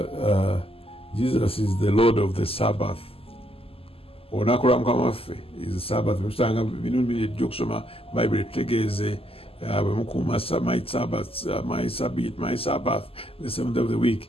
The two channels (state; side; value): late; right; 0.28 ms